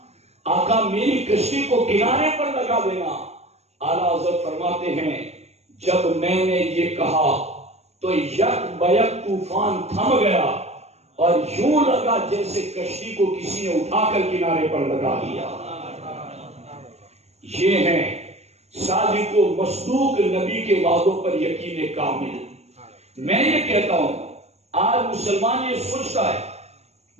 آقا میری کشتی کو کنارے پر لگا دینا. اعلیٰ حضرت فرماتے ہیں جب میں نے یہ کہا تو یک بیک طوفان تھم گیا اور یوں لگا جیسے کشتی کو کسی نے اٹھا کر کنارے پر لگا دیا. یہ ہیں صادق و مصدوق نبی کے وعدوں پر یقین کامل. میں یہ کہتا ہوں آج مسلمان یہ سوچتا ہے,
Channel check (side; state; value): left; late; 0.31 ms